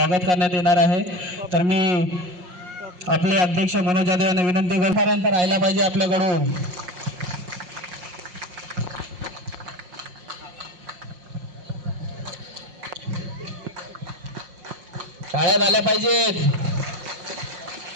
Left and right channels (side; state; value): left; late; 5.5 ms